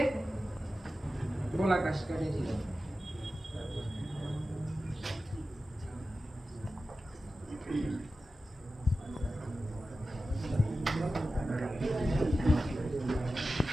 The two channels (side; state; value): both; normal; correlation 0.93